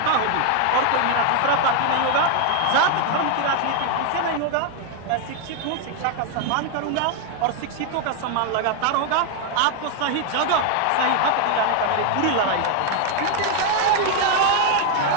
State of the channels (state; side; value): different; both; correlation 0.00